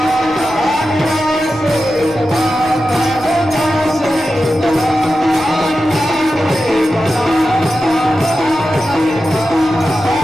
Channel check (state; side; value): noise; left; rumble, 22 dB below the sound